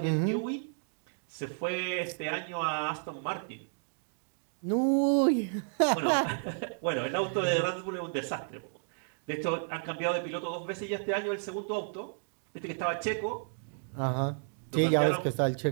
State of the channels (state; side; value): silent; left; digital silence